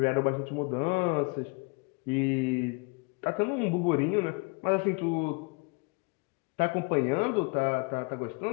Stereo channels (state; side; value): quieter; right; 30.6 dB